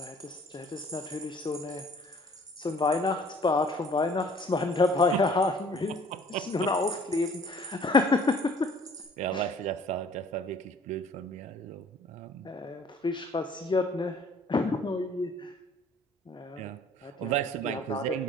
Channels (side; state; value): both; normal; correlation 0.54